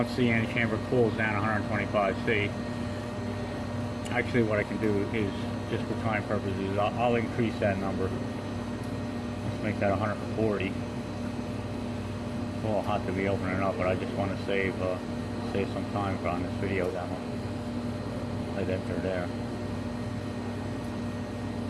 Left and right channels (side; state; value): both; identical; correlation 1.00